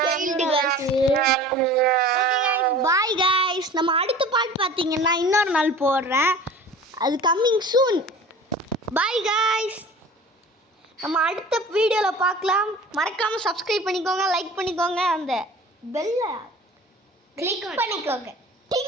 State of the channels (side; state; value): both; normal; correlation 0.41